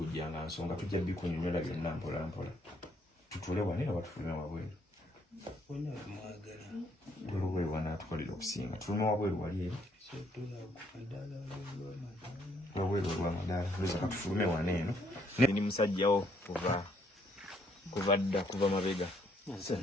nga nsonga tujja bikunyonyola byonna mpola mpola tutule wano era batufulume wabweru olubweru wanatukolera okusinga tulume wabweru wali eri wabweru olwamadaala lweza katufulume wano eno ni musajjawo kuva mabega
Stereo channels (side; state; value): both; normal; correlation 0.69